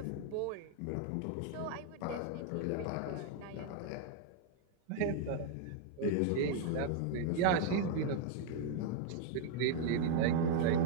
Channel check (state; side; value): different; both; correlation 0.00